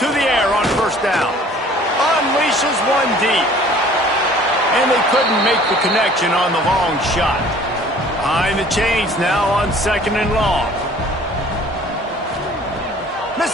the air on 1st down. Unleashes one deep. And they couldn't make the connection on the long shot. Behind the chains now on 2nd and long.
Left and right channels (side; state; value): both; normal; correlation 0.52